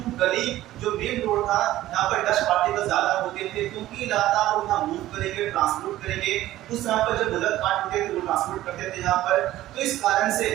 गली जो मेन रोड था यहाँ पर डस्ट पार्टिकल ज्यादा होते थे, क्योंकि लगातार वो यहाँ मूव करेंगे, ट्रांसपोर्ट करेंगे। उस यहाँ पर जब बुलेट कार्ट होते थे वो ट्रांसपोर्ट करते थे यहाँ पर। तो इस कारण से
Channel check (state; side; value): quieter; left; 14.9 dB